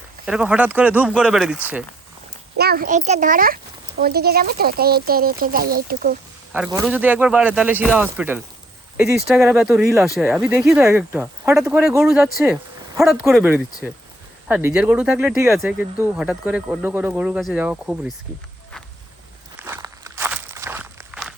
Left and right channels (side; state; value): both; normal; correlation 0.67